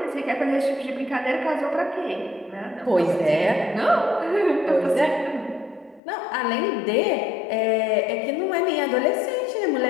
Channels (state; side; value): drops out; right; at 6.0 s